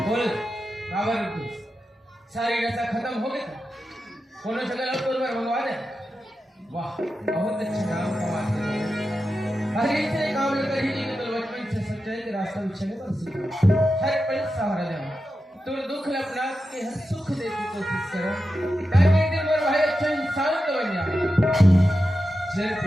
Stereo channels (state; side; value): normal; both; correlation 0.90